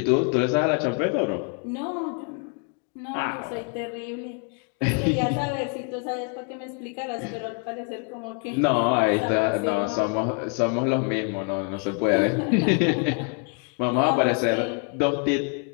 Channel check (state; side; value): quieter; right; 37.0 dB